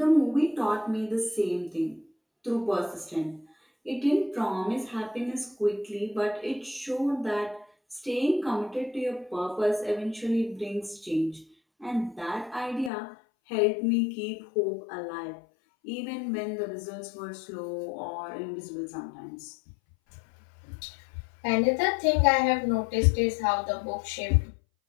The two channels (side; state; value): right; drops out; at 12.9 s